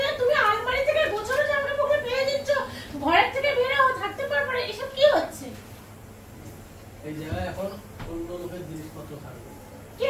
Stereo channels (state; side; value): identical; both; correlation 1.00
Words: না, তুমি আলমারি থেকে গোছানো জামা কাপড় ফেলে দিচ্ছ, ঘরের থেকে বের হও, থাকতে পারবে না, এসব কি হচ্ছে? এই জায়গায় এখন অন্য লোকের জিনিসপত্র থাকবে।